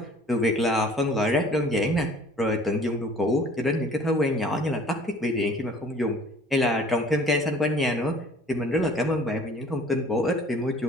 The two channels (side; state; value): both; normal; correlation 0.51